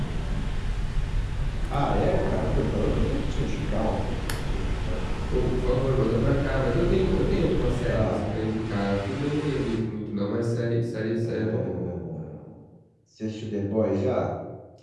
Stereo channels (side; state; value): both; identical; correlation 1.00